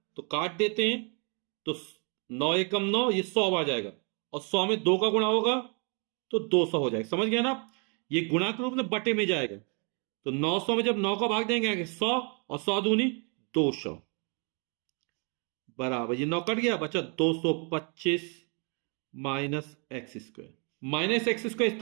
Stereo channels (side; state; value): left; quieter; 36.4 dB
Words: तो काट देते हैं, तो 9 एकम 9, ये 100 आ जाएगा, और 100 में 2 का गुणा होगा तो 200 हो जाएगा। समझ गया ना? ये गुणा के रूप में बट्टे में जाएगा, तो 900 में जब 9 का भाग देंगे 100, और 100 दूनी 200 बराबर, ये 9 कट गया, बचा 225 -x²। -x² इस